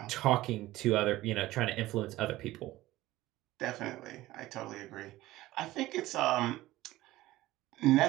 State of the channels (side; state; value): left; quieter; 16.9 dB